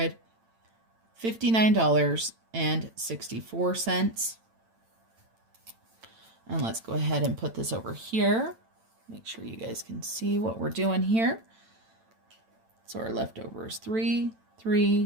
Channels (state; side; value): late; left; 8.9 ms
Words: And let's go ahead and put this over here. Make sure you guys can see what we're doing here. So our leftover is